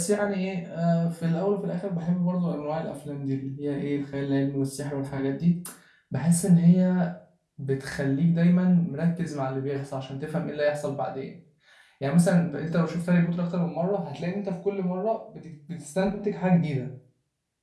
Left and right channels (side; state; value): both; identical; correlation 1.00